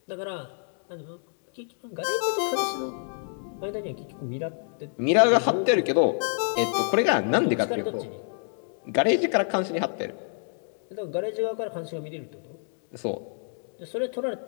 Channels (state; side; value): silent; right; 60 dB below the other